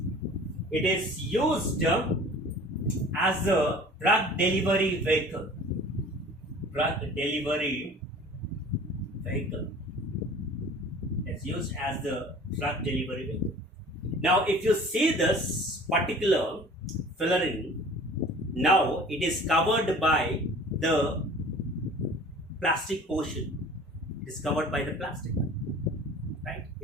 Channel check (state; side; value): normal; both; correlation 0.45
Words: it is used as a drug delivery vehicle. It's used as the drug delivery vehicle. Now, if you see this particular fullerene, now it is covered by the plastic portion. It is covered by the plastic. Right?